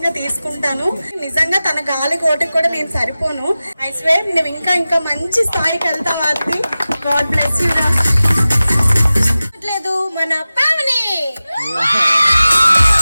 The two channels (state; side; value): inverted; both; correlation -0.96